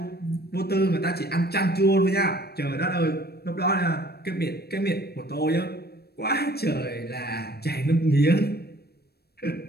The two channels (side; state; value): right; late; 0.46 ms